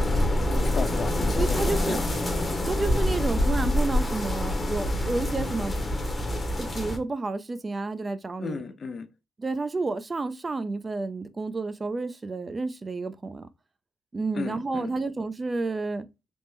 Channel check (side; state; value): both; normal; correlation 0.89